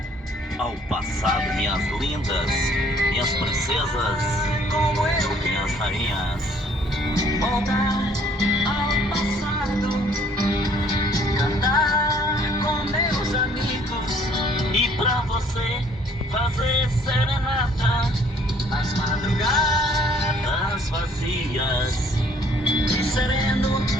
ao passado, minhas lindas, minhas princesas, minhas rainhas. Voltar ao passado, cantar com meus amigos E pra você fazer serenata nas madrugadas vazias. e sereno,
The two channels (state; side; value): normal; both; correlation 0.60